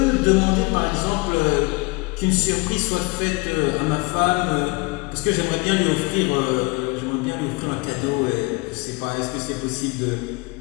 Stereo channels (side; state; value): right; quieter; 26.8 dB